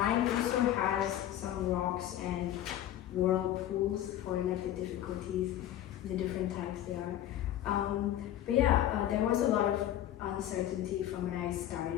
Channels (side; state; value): right; quieter; 12.1 dB